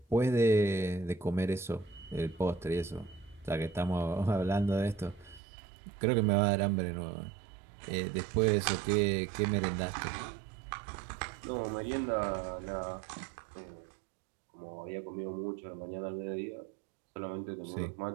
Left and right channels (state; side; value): drops out; left; at 5.4 s